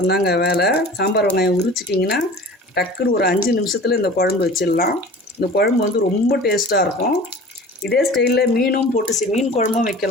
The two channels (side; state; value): both; normal; correlation 0.41